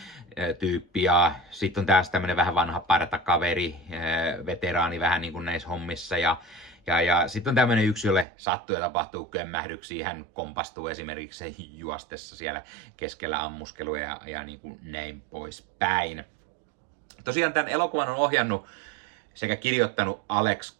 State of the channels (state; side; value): drops out; left; at 8.2 s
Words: tyyppi, ja sitten on tässä tämmöinen vähän vanha partakaveri, veteraani vähän niin kuin näissä hommissa, ja sitten on tämmöinen yksi, jolle sattuu ja tapahtuu kömmähdyksiä, hän kompastuu esimerkiksi juostessa siellä keskellä ammuskeluja ja niin kuin näin poispäin. Tosiaan tämän elokuvan on ohjannut sekä kirjoittanut Alex